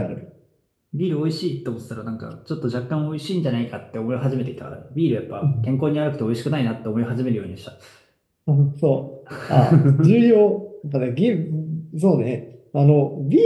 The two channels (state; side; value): identical; both; correlation 1.00